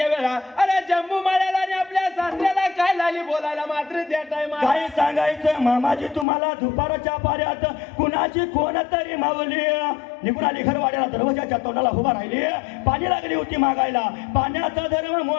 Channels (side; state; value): right; drops out; at 6.2 s